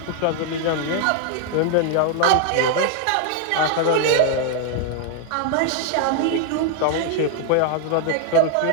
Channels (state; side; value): different; both; correlation 0.00